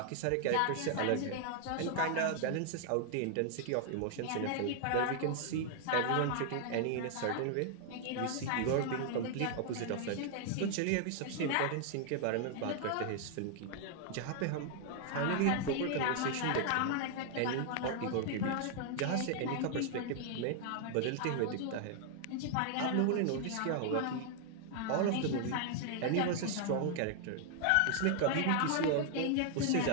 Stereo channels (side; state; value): both; different; correlation 0.00